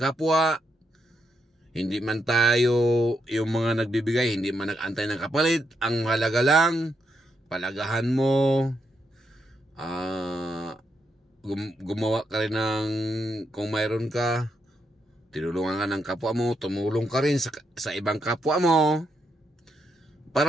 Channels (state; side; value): normal; both; correlation 0.80